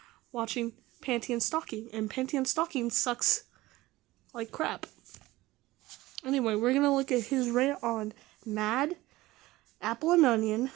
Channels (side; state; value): left; quieter; 18.3 dB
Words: watching Panty and Stocking, and Panty and Stocking sucks like crap. Anyway, we're gonna look at his rant on Mad, Apple and Onion,